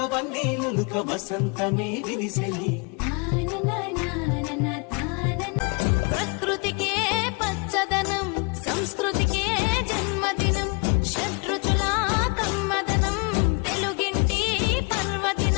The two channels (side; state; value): right; quieter; 33.3 dB